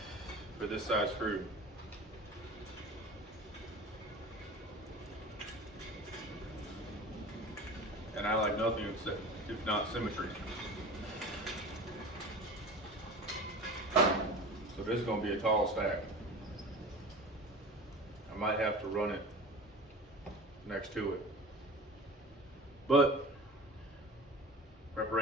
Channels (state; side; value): normal; both; correlation 0.36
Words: for this size screw. And I like nothing if not symmetry. So this is going to be a tall stack. I might have to run it next to it. But